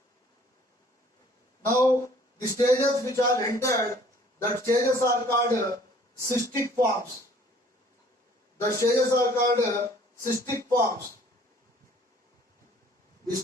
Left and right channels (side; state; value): both; normal; correlation 0.56